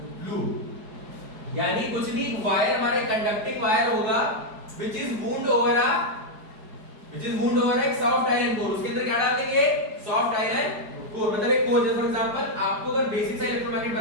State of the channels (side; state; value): left; late; 4.8 ms